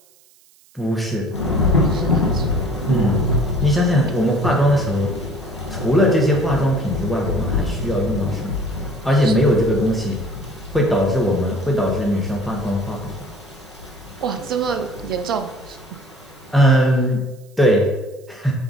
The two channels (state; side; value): noise; right; hiss, 30 dB below the sound